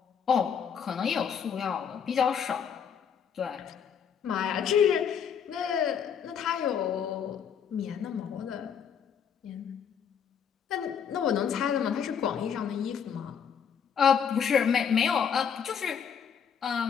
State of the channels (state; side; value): quieter; right; 7.5 dB